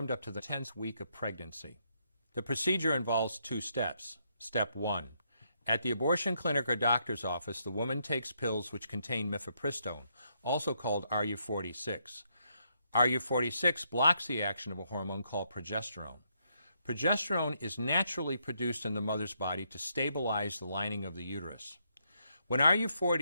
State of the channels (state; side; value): inverted; both; correlation -0.76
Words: up to the 10th week of pregnancy. The procedure involves 2 steps. Step 1. At the abortion clinic or doctor's office, the woman takes pills which contain mifepristone, also called RU46. RU46 blocks the action of a hormone called progesterone. Progesterone is naturally produced in the mother's body to stabilize the lining of the uterus. When